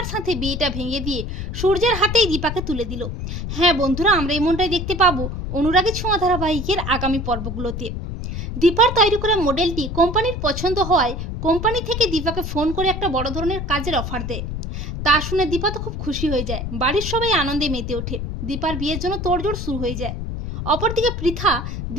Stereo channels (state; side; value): noise; left; rumble, 5 dB below the sound